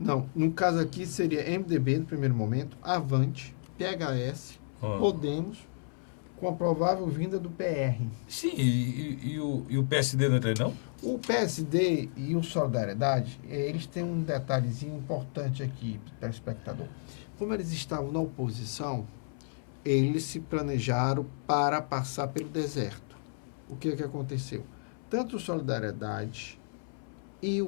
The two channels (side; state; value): right; silent; 57 dB below the other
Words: no caso aqui seria MDB no primeiro momento, Avante, PHS, Podemos, com a provável vinda do PR. Sim, e o PSD não entra aí, não? O PSD e o Solidariedade, eles têm um detalhezinho importante aqui para o espectador. Como eles estavam na oposição, eles se planejaram para passar pelo deserto. O que aconteceu? Tanto o Solidariedade e